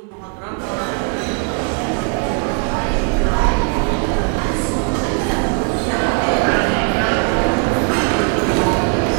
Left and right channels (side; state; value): left; quieter; 34.5 dB